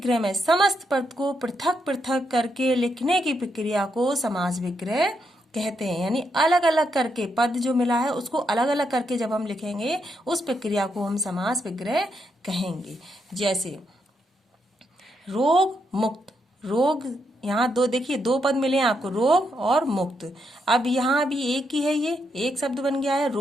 में समस्त पद को पृथक पृथक करके लिखने की प्रक्रिया को समास विग्रह कहते हैं। यानी अलग अलग करके पद जो मिला है उसको अलग अलग करके जब हम लिखेंगे उस प्रक्रिया को हम समास विग्रह कहेंगे। जैसे रोग मुक्त। रोग, यहाँ दो देखिए, दो पद मिले हैं आपको, रोग और मुक्त। अब यहाँ भी एक ही है, ये एक शब्द बन गया है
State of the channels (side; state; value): both; normal; correlation 0.80